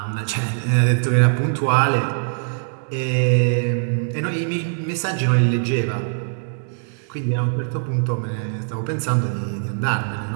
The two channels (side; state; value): left; silent; digital silence